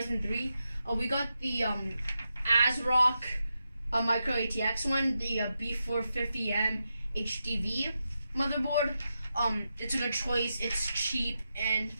3. We got the ASRock Micro ATX one, the B450M HDV motherboard. It's a good choice. It's cheap, and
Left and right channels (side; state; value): both; inverted; correlation -0.87